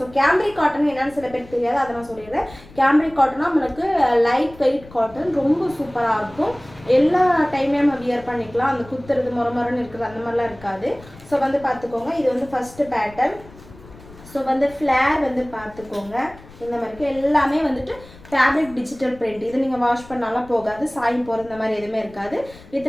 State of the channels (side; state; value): left; noise; rumble, 21 dB below the sound